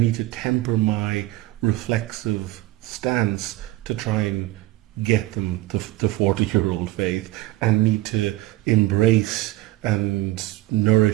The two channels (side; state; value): left; quieter; 17.2 dB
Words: to temper my reflexive stance to try and get them to 40-year-old faith, and need to embrace and